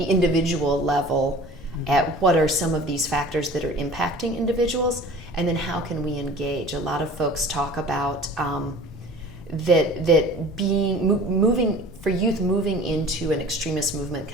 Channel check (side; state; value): left; noise; rumble, 18 dB below the sound